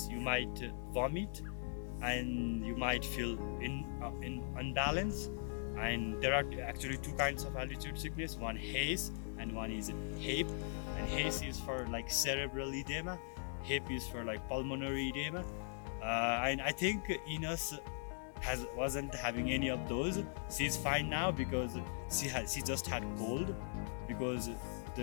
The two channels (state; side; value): silent; right; digital silence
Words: you might vomit and you might feel in unbalance. And there are actually two kinds of altitude sickness, one haze and one is HAPE. And haze is for like cerebral edema, HAPE is for like pulmonary edema. And I think Ines wasn't having any of those. She's fine now because she just had cold, because